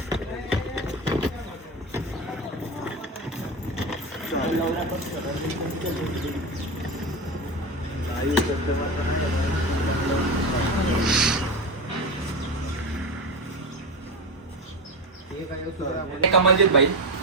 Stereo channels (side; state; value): both; normal; correlation 0.20